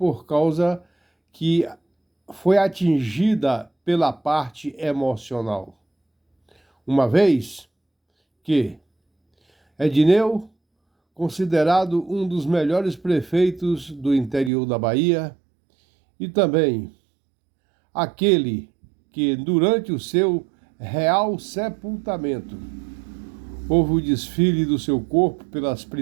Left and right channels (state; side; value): drops out; left; at 14.5 s